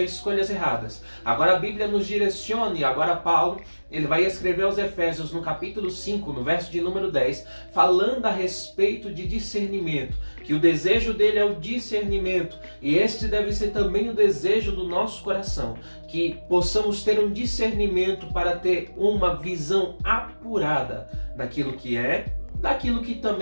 escolhas erradas. Agora a Bíblia nos direciona, e agora Paulo ele vai escrever aos Efésios no capítulo 5, no verso de número 10, falando a respeito de discernimento, que o desejo dele é o discernimento, e este deve ser também o desejo do nosso coração, que possamos ter um discernimento para ter uma visão apurada daquilo que é, daquilo que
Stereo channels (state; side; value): inverted; both; correlation -1.00